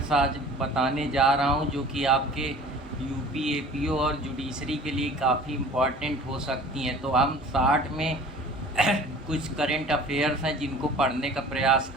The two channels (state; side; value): normal; both; correlation 0.45